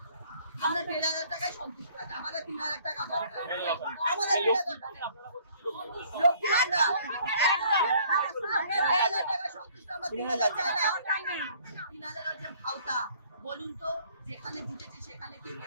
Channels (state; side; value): inverted; both; correlation -0.58